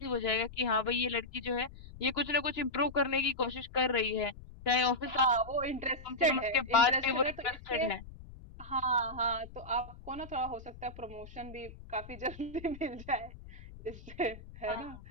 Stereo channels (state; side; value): noise; left; rumble, 16 dB below the sound